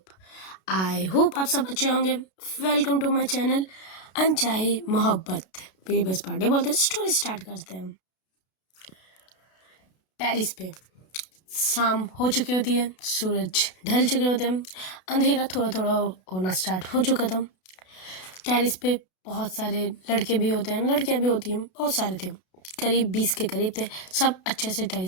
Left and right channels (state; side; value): late; right; 32 ms